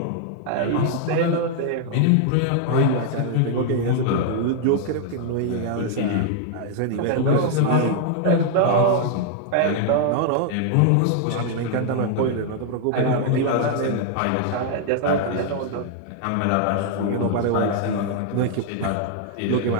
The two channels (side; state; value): both; different; correlation 0.00